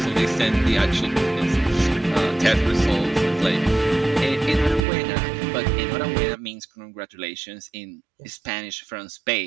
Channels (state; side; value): drops out; left; at 4.9 s